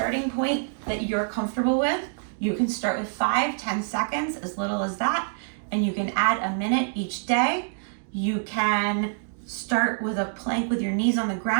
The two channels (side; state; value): left; silent; digital silence